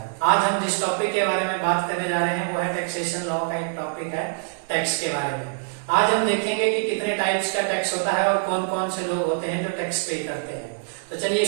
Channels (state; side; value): silent; left; digital silence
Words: आज हम जिस टॉपिक के बारे में बात करने जा रहे हैं वो है टैक्सेशन लॉ का एक टॉपिक है टैक्स के बारे में। आज हम देखेंगे कि कितने टाइप्स का टैक्स होता है और कौन कौन से लोग होते हैं जो टैक्स पे करते हैं। तो चलिए